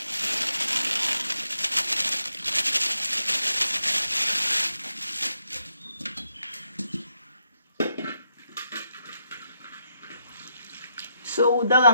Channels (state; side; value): inverted; both; correlation -0.79